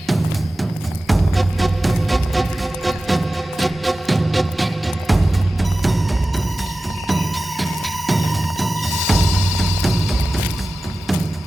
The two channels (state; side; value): normal; both; correlation 0.95